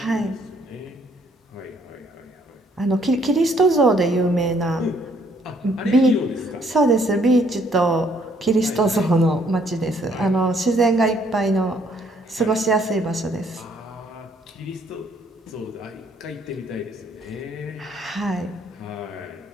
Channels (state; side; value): normal; both; correlation 0.66